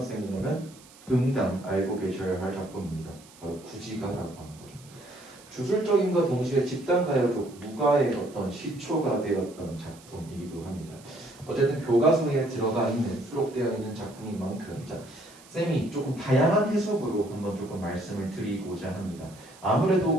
응당 알고 계셔야 할 작품입니다. 바로 구지가라고 하는 거죠. 주술적인과 동시에 집단 가요적 무가의 어떤 시초가 되었던 작품이기도 합니다. 어쨌든 교과서에 들어가 있는 수록되어 있는 작품인 만큼 자, 쌤이 조금 다양한 해석으로 한번 조금 말씀을 드리고자 합니다.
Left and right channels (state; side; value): noise; right; hiss, 23 dB below the sound